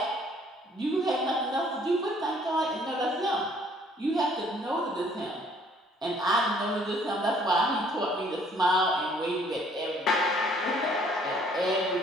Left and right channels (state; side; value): normal; both; correlation 0.61